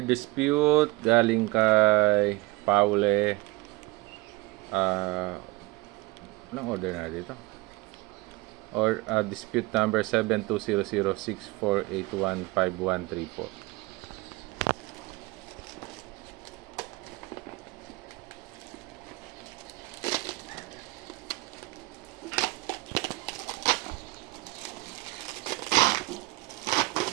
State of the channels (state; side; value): quieter; left; 22.7 dB